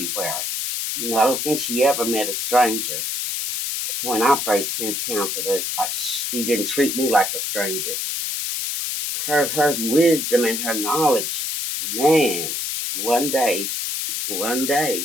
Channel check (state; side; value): noise; left; hiss, 2 dB below the sound